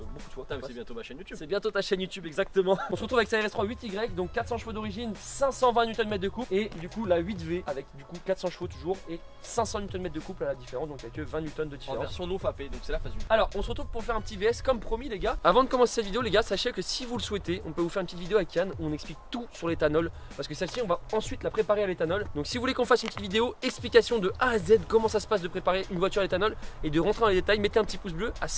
de fois. C'est bientôt ma chaîne YouTube. C'est bientôt ta chaîne YouTube exactement. On se retrouve avec sa RS3 8Y, donc 400 chevaux d'origine, 520 Nm de couple. Et du coup la 8V avec du coup 400 chevaux toujours et 500 Nm de couple à la différence, donc avec 20 Nm de En différence. version non fapée, donc c'est la phase 1. Alors on se retrouve pour faire un petit VS comme promis les gars. Avant de commencer cette vidéo les gars, sachez que si vous le souhaitez, on peut vous faire une petite vidéo avec Yann où on explique tout sur l'éthanol. Parce que celle-ci on va ensuite la préparer à l'éthanol. Donc si vous voulez qu'on fasse une petite vidéo explication de A à Z comment ça se passe de préparer une voiture à l'éthanol et de rentrer dans les détails, mettez un petit pouce bleu. À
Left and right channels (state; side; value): identical; both; correlation 1.00